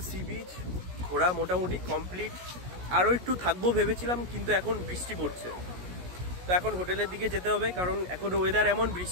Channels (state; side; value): late; left; 17 ms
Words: সি বিচ ঘোরা মোটামুটি কমপ্লিট। আরও একটু থাকবো ভেবেছিলাম, কিন্তু এখন বৃষ্টি পড়ছে, তো এখন হোটেলের দিকে যেতে হবে, কারণ এখন ওয়েদার এমন,